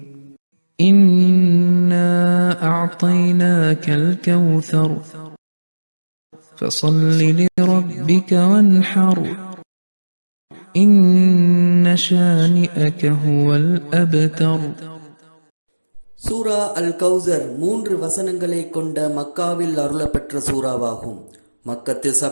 இன்னா அஅதைனாகல் கௌசர் فصل لربك وانحر إن شانئك هو الأبتر. சூரா அல் கௌசர் 3 வசனங்களை கொண்ட மக்காவில் அருளப்பெற்ற சூறாவாகும். மக்கத்து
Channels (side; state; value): both; inverted; correlation -1.00